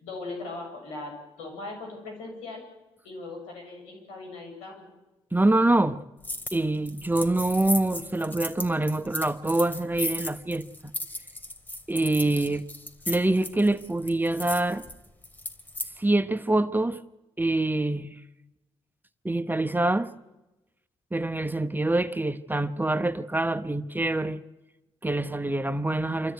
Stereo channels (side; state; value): both; normal; correlation 0.88